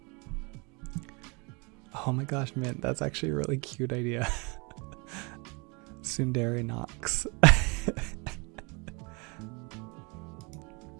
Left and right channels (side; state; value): left; quieter; 30.0 dB